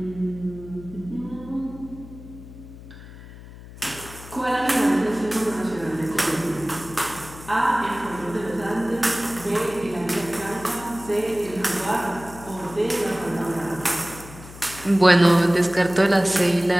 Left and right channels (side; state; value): left; noise; hum, 17 dB below the sound